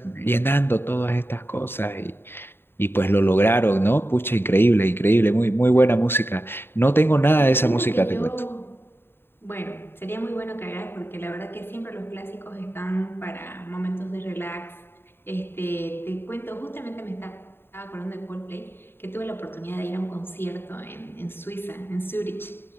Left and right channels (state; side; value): late; right; 0.11 ms